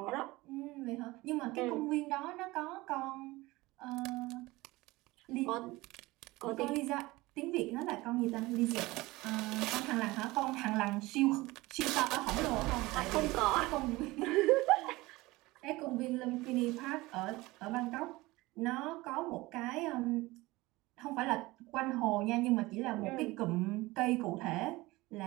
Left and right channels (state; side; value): quieter; left; 20.5 dB